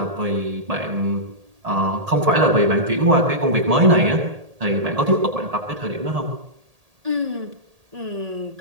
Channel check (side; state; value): left; late; 1.8 ms